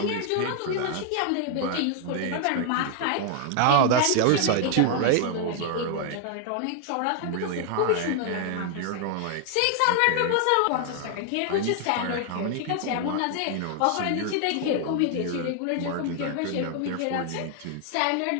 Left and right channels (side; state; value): both; different; correlation 0.00